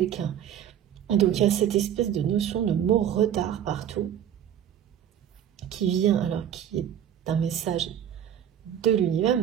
Donc il y a cette espèce de notion de mot retard partout, qui vient, alors qui est un message de l'univers,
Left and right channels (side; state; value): left; quieter; 9.8 dB